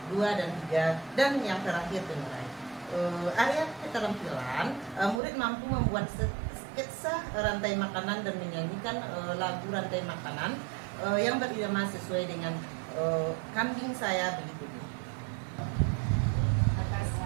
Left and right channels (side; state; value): left; drops out; at 5.2 s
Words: dan 3, dan yang terakhir pengurai. Area keterampilan, murid mampu membuat sketsa rantai makanan dan menyanyikan lagu rantai makanan yang berirama sesuai dengan kambing saya begitu. Atas